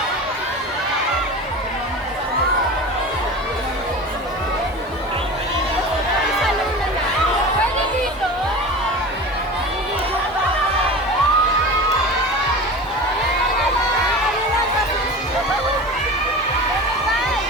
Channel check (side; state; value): both; normal; correlation 0.32